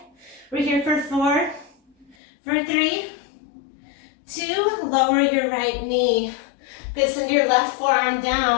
We're here for 4, for 3, 2, lower your right knee. Good, send your left forearm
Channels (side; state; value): right; drops out; at 2.1 s